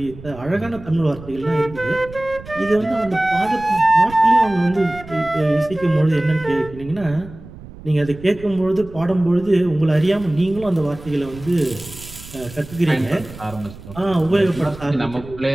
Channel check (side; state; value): right; noise; rumble, 16 dB below the sound